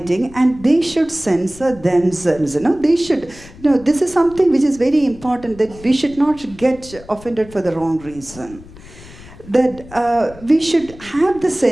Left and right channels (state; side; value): noise; left; rumble, 19 dB below the sound